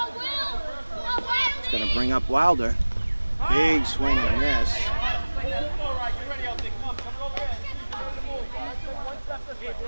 bring up Wilder. Big swing and a miss.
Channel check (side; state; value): both; inverted; correlation -1.00